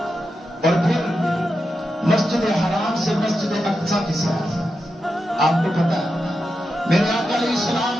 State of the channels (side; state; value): both; normal; correlation 0.88